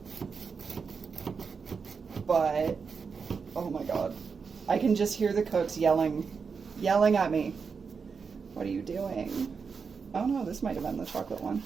But, oh my god. I can just hear the cooks yelling at me. What are you doing? Oh no, this might have been the chocolate one.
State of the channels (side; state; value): left; quieter; 5.5 dB